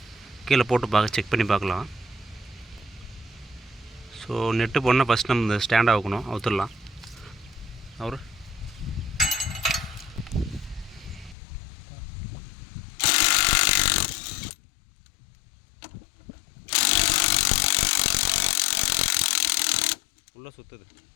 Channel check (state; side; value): drops out; right; at 11.4 s